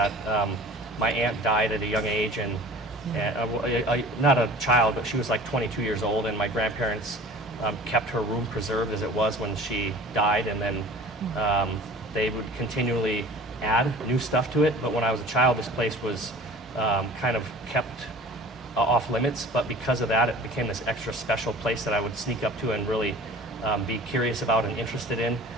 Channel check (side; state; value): both; normal; correlation 0.44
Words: my aunt died at a young age, and not a child, but she was like 22 years old, and my grandparents kept her room preserved as it was when she died, and then they would continually add new stuff to it. But when I was a child, this place was kind of kept off limits, but because of that, it became this extra special place that I would sneak up to and really be curious about and interested in.